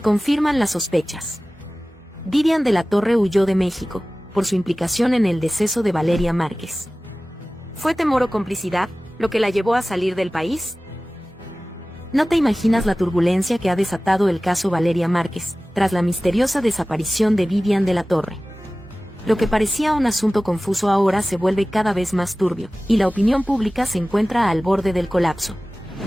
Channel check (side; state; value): both; normal; correlation 0.97